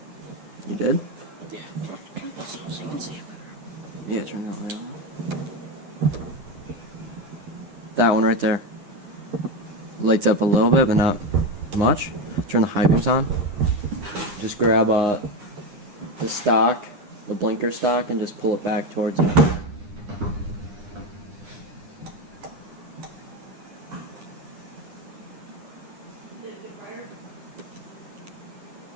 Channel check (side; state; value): left; late; 9.8 ms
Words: You did? Yeah. Turn this on so you can see it better. Yeah, turn that light on. That one right there. Lights up a little bit, but not much. Turn the high beams on. Just grab the stock, the blinker stock, and just pull it back towards it. Did it get brighter?